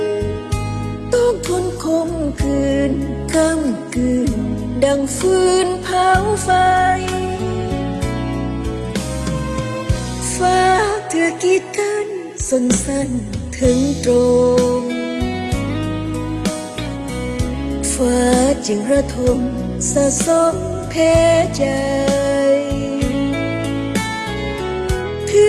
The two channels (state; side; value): identical; both; correlation 1.00